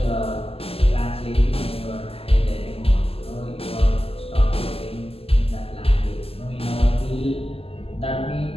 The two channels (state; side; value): late; right; 0.28 ms